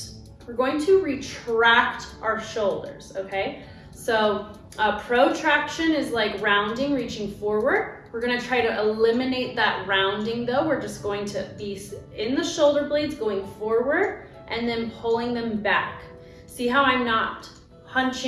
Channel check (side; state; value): both; identical; correlation 1.00